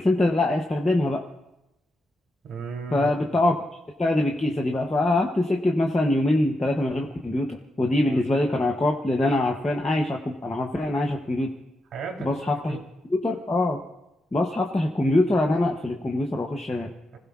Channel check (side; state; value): both; normal; correlation 0.86